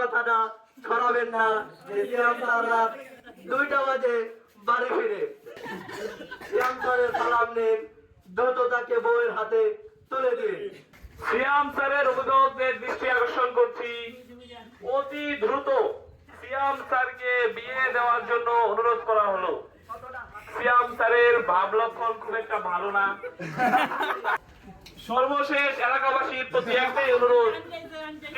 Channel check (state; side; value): identical; both; correlation 1.00